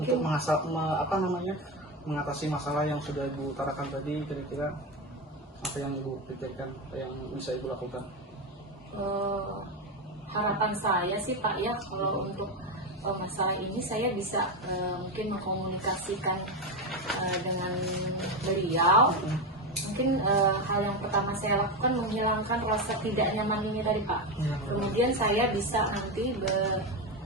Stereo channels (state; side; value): normal; both; correlation 0.14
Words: mengatasi masalah yang sudah Ibu utarakan tadi, kira-kira apa yang Ibu pikirkan, yang bisa Ibu lakukan? Harapan saya sih Pak ya, kalau untuk masalah ini saya bisa mungkin mengkomunikasikan dengan beliau. Mungkin hal yang pertama saya lakukan menghilangkan rasa tidak nyaman ini tadi Pak. Kemudian saya bisa nanti